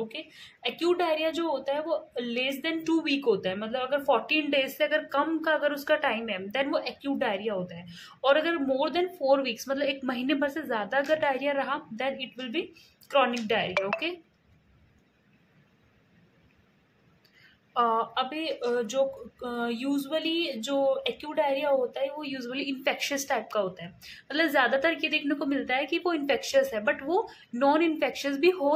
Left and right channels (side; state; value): both; identical; correlation 1.00